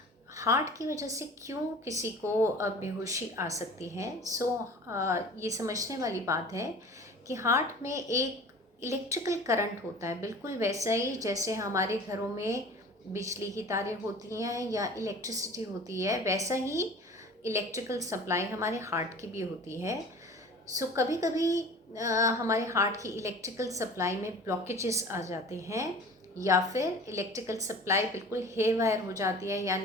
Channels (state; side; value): normal; both; correlation 0.42